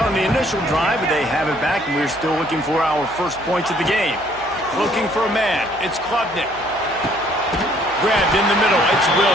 on the initial drive, but they have it back, and we're still looking for our first points of the game. Looking for a man. It's Klubnik. Grabbed in the middle. It's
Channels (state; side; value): noise; right; hum, 23 dB below the sound